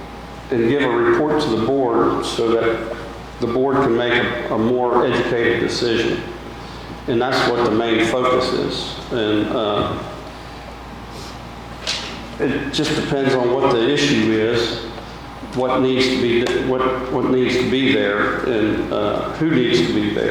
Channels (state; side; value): identical; both; correlation 1.00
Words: and give a report to the board so that the board can make a more educated decision. And that's what the main focus is. And it just depends on what the issue is, what needs to be there, and who needs to be